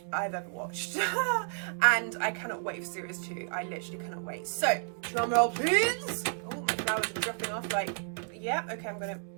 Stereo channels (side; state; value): left; silent; 57 dB below the other